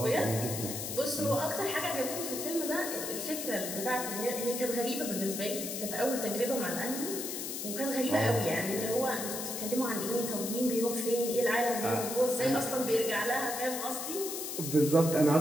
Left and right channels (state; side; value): noise; left; hiss, 5 dB below the sound